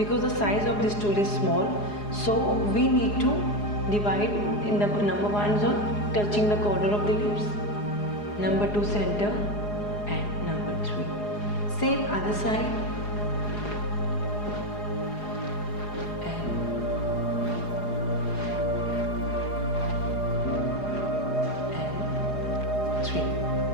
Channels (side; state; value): right; late; 4.8 ms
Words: the size of this tool is small. So we need to divide in the number 1 zone, touching the corner of the lips, number 2 center and number 3. Same other side.